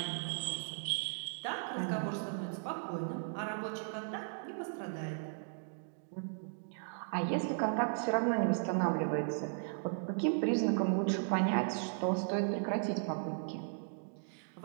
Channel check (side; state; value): left; silent; digital silence